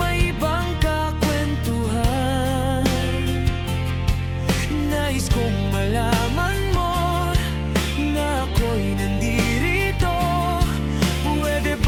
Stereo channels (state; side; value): identical; both; correlation 1.00